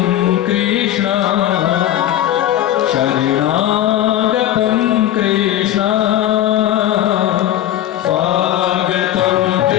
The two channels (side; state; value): right; quieter; 12.4 dB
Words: कृष्ण शरणागतम कृष्ण, स्वागतम